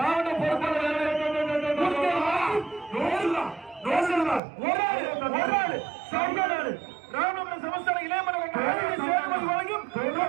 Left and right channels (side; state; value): left; drops out; at 4.4 s